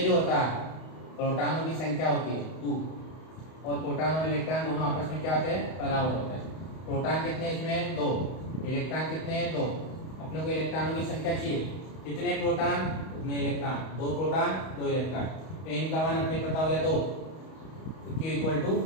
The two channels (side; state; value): right; late; 31 ms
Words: होता है प्रोटॉनों की संख्या होती है 2, और प्रोटॉन और इलेक्ट्रॉन दोनों आपस में क्या होते हैं? बराबर होते हैं। प्रोटॉन कितने इसमें? 2। इलेक्ट्रॉन कितने हैं? 2। अपने को इलेक्ट्रॉनों की संख्या चाहिए, कितने प्रोटॉन उतने इलेक्ट्रॉन, 2 प्रोटॉन 2 इलेक्ट्रॉन। तो N का मान अपने पता हो गया 2, तो Q =